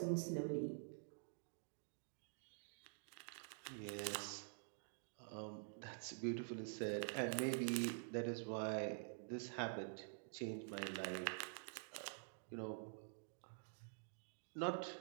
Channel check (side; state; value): left; silent; digital silence